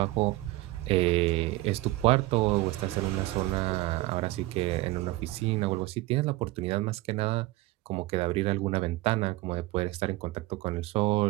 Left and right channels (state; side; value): quieter; left; 19.0 dB